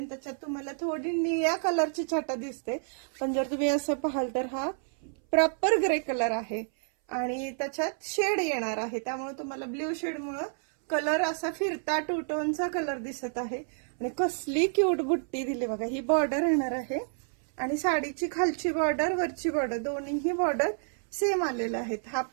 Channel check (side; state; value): left; silent; 58 dB below the other